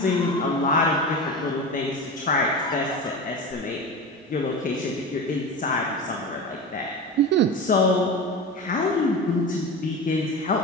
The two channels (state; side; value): normal; both; correlation 0.27